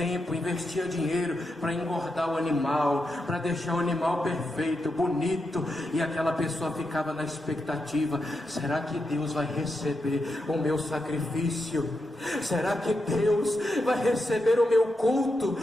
investia dinheiro para engordar o animal, para deixar o animal perfeito, bonito, e aquela pessoa ficava na expectativa: será que Deus vai receber o meu sacrifício? Será que Deus vai receber o meu culto?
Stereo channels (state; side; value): normal; both; correlation 0.86